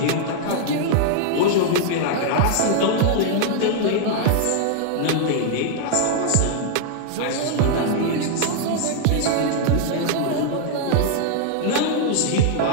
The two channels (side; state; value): both; different; correlation 0.00